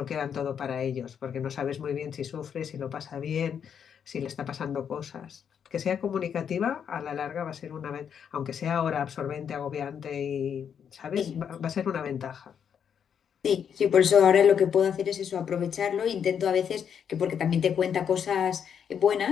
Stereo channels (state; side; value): quieter; right; 7.8 dB